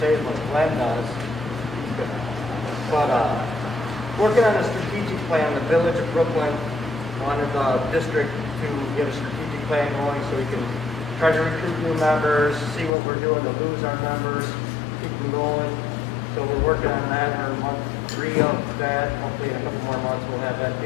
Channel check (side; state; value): right; drops out; at 12.9 s